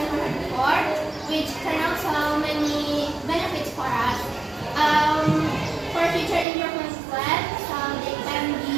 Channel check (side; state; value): left; drops out; at 6.5 s